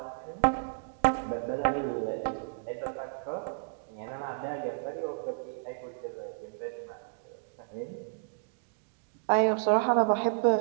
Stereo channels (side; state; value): left; silent; digital silence